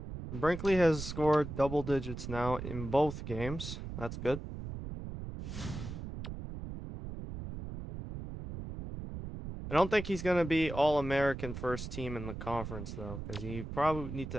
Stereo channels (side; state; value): right; noise; rumble, 8 dB below the sound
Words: Brinkley has scored double digits now in both games. That's good. I don't think he's going to be All-American first team in the conference, though, because he probably need